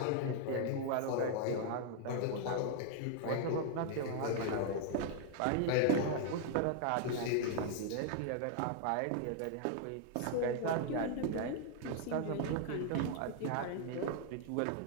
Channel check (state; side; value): different; both; correlation 0.00